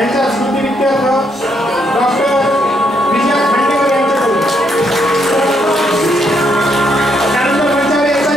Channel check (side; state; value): both; normal; correlation 0.74